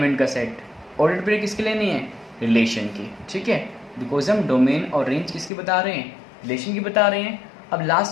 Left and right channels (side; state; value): right; drops out; at 5.5 s